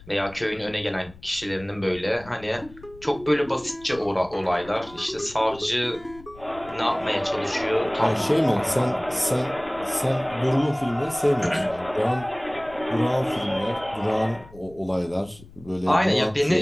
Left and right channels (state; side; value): noise; left; rumble, 21 dB below the sound